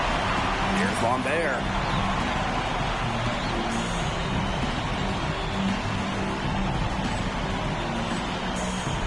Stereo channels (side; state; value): both; identical; correlation 1.00